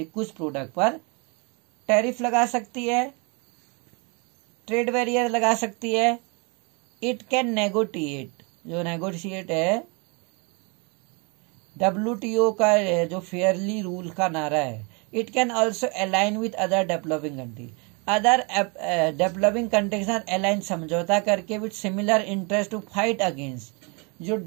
है, कुछ प्रोडक्ट पर टैरिफ लगा सकती है, ट्रेड बैरियर लगा सकती है। इट कैन नेगोटिएट, जो नेगोशिएट है WTO का जो फेयरली रूल का नारा है। It can also align with other developing country, other developing country के साथ अलाइन, समझौता करके with similar interest to fight against जो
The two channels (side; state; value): left; quieter; 32.0 dB